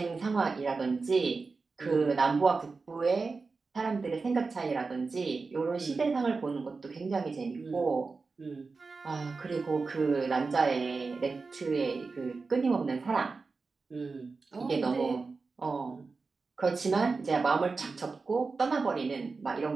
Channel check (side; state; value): left; quieter; 4.3 dB